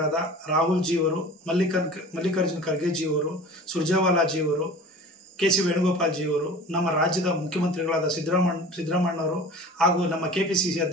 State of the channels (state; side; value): normal; both; correlation 0.40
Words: ರಾಹುಲ್ ಜಿ ಅವರು, ಮಲ್ಲಿಕಾರ್ಜುನ್ ಖರ್ಗೆ ಜಿ ಅವರು, ಸುರ್ಜೇವಾಲಾ ಜಿ ಅವರು, KC ವೇಣುಗೋಪಾಲ್ ಜಿ ಅವರು, ನಮ್ಮ ರಾಜ್ಯದ ಮುಖ್ಯಮಂತ್ರಿಗಳಾದ ಸಿದ್ದರಾಮಣ್ಣವರು ಹಾಗೂ ನಮ್ಮ KPCC